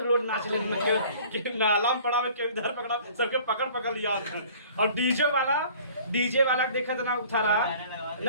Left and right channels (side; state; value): both; inverted; correlation -0.49